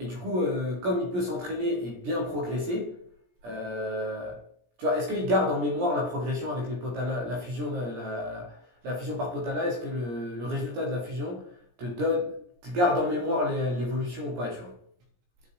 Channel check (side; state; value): left; late; 17 ms